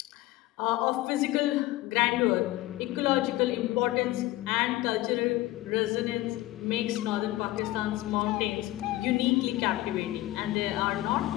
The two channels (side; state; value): right; quieter; 17.2 dB